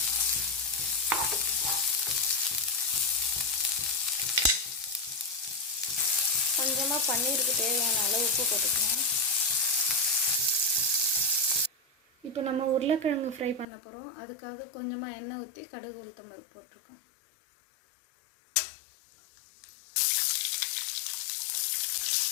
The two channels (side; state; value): right; drops out; at 13.7 s